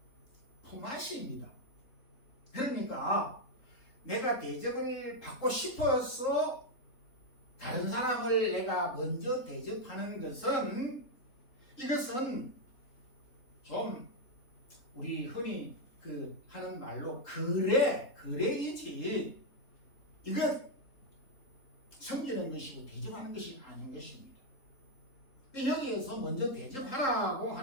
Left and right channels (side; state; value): right; late; 3.7 ms